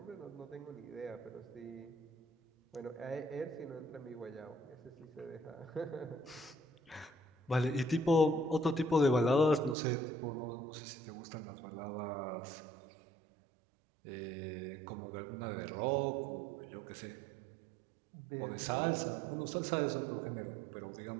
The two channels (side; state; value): left; drops out; at 9.8 s